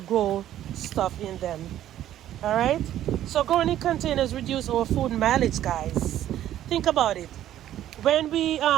stuff in them. All right, so growing in containers reduce our food mileage, guys. Think about it. When we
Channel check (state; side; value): quieter; left; 12.2 dB